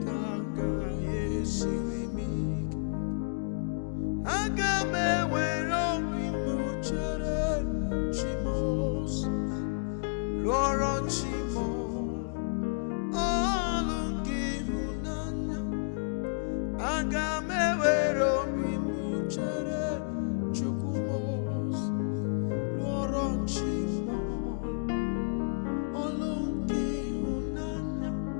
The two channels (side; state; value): right; silent; digital silence